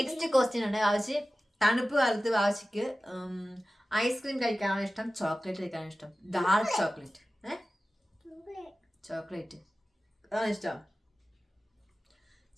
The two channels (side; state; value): both; normal; correlation 0.96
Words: ക്വസ്റ്റ്യൻ ആണ്. വാവച്ചി, തണുപ്പ് കാലത്ത് വാവച്ചിക്ക് ഐസ്ക്രീം കഴിക്കാനാണോ ഇഷ്ടം, ചോക്ലേറ്റ് കഴിക്കാനാണോ ഇഷ്ടം? Dark chocolate. ചോക്ലേറ്റ് അതാണ് ഇഷ്ടം.